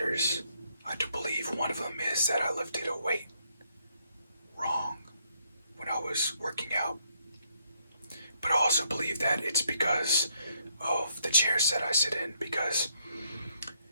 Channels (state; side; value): inverted; both; correlation -0.72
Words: I do believe one of them is that I lifted a weight wrong when I was working out. But I also believe that it's because of the chairs that I sit in, because